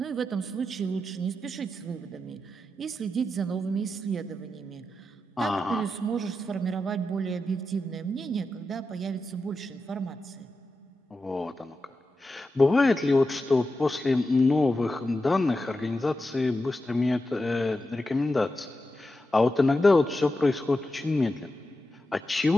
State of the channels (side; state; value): both; normal; correlation 0.89